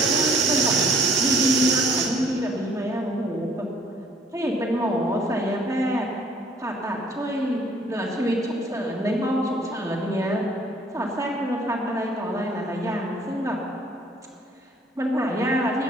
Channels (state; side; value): normal; both; correlation 0.60